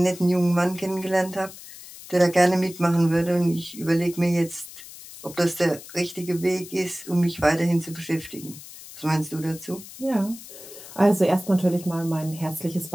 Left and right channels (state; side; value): noise; left; hiss, 16 dB below the sound